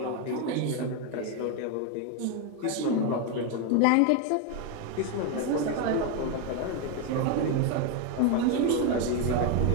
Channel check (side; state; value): both; different; correlation 0.02